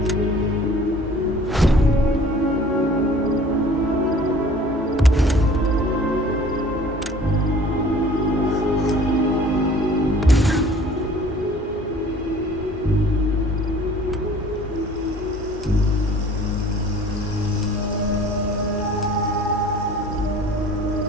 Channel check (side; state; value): both; normal; correlation 0.50